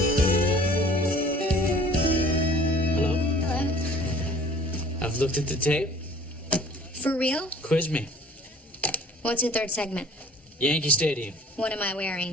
Hello? I've looked at the tape. For real? Quiz me. What's your third segment? Yankee Stadium. What am I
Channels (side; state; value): both; normal; correlation 0.50